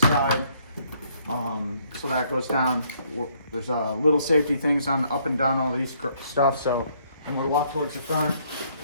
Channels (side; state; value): both; inverted; correlation -0.67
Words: So that goes down. There's little safety things on up and down all these stuff. So when we walk towards the front,